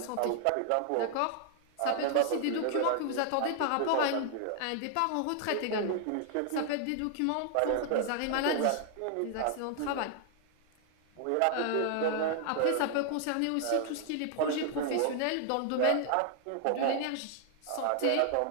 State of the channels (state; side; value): different; both; correlation 0.00